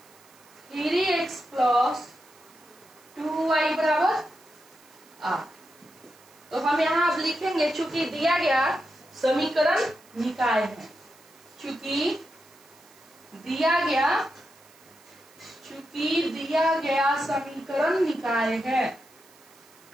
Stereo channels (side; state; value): right; noise; hiss, 27 dB below the sound